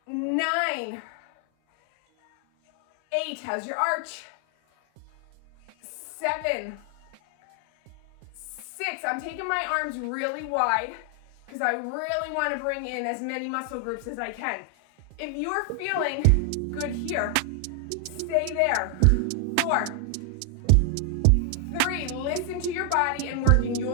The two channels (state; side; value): different; both; correlation 0.00